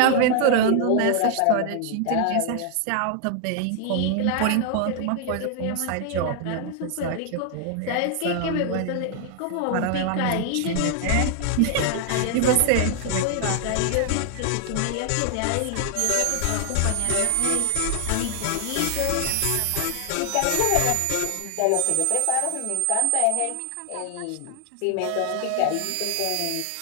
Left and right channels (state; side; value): different; both; correlation 0.00